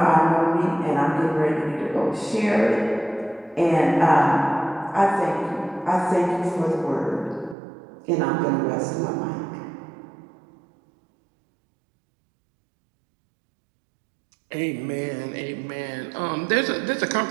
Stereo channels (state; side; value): drops out; left; at 7.6 s